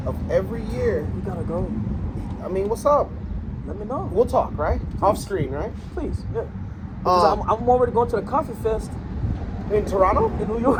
of every year. We gotta go. I mean, what's up? Let me know. We'll talk, right? Off screen, right? Please, yeah. Because I'm already going to the coffee fest. In Toronto? In New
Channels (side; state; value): both; identical; correlation 1.00